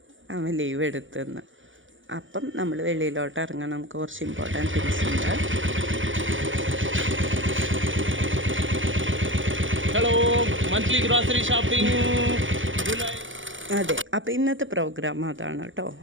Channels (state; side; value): late; left; 0.56 ms